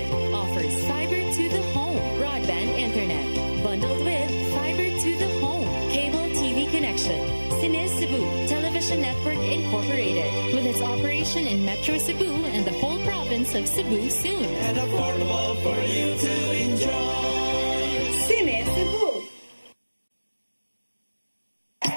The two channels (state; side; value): inverted; both; correlation -1.00